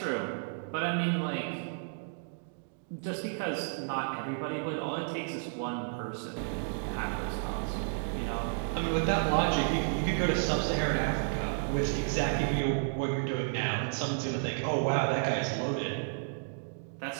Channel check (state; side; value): silent; left; digital silence